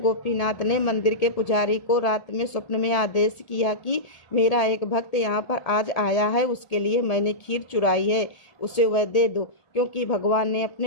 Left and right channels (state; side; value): late; right; 1.7 ms